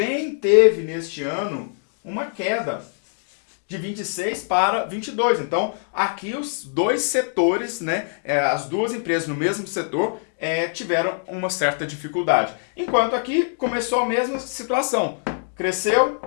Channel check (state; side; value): silent; right; digital silence